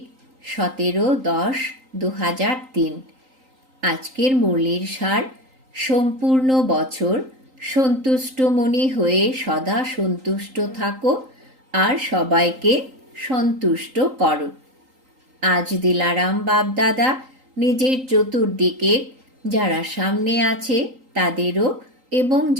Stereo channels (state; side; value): late; left; 3.8 ms